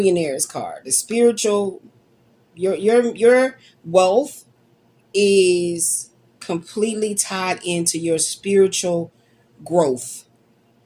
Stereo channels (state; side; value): identical; both; correlation 1.00